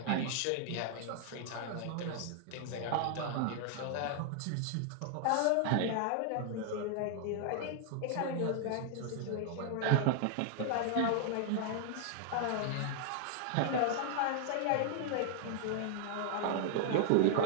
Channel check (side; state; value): both; different; correlation -0.01